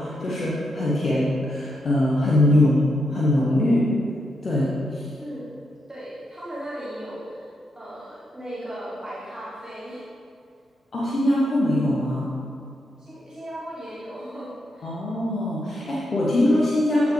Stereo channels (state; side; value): normal; both; correlation 0.81